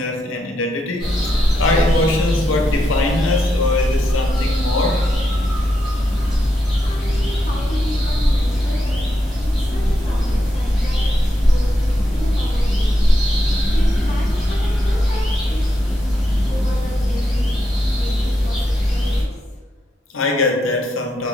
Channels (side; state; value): both; normal; correlation 0.83